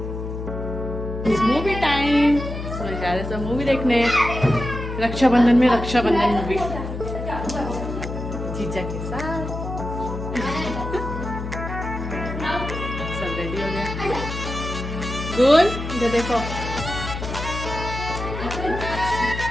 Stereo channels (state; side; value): noise; left; hum, 6 dB below the sound